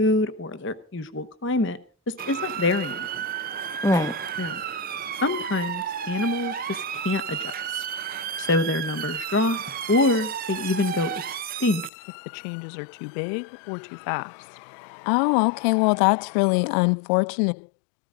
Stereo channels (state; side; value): drops out; right; at 11.9 s